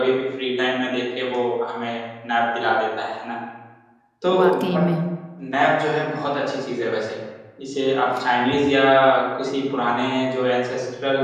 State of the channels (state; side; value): identical; both; correlation 1.00